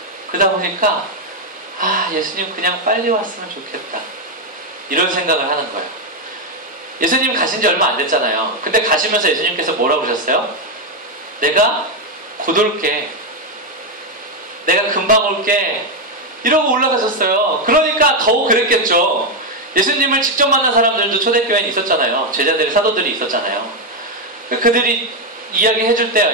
그러다 보니까 예수님 그냥 빨리 왔으면 좋겠다. 이런 생각을 하는 거예요. 예수님 가신 지 얼마 안 됐잖아요. 근데 가시면서 예수님께서 뭐라고 그러셨어요? 내가 곧 올게. 내가 금방 올게. 이러고 올라가셨어요. 그러니까 더욱 그랬겠죠. 예수님을 직접 만난 사람들도 초대교회에 있었잖아요. 제자들의 사도들이 있었잖아요. 그들이 이야기해줄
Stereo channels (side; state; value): both; normal; correlation 0.05